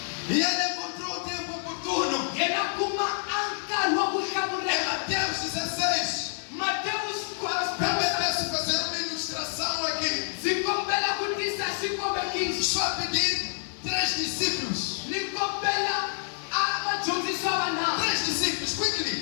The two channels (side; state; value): right; silent; digital silence